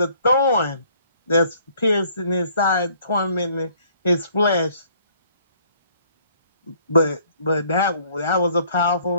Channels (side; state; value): both; inverted; correlation -0.61